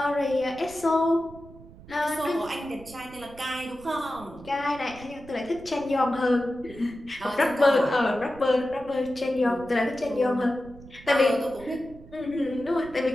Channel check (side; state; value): right; noise; rumble, 19 dB below the sound